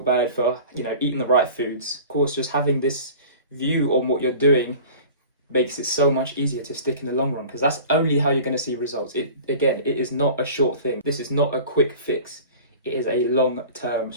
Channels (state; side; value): inverted; both; correlation -0.41